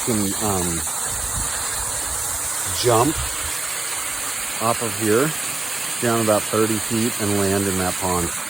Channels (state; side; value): quieter; left; 3.1 dB